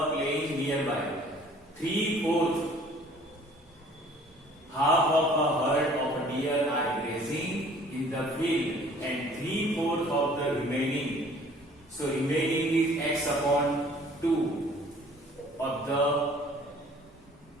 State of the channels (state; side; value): normal; both; correlation 0.53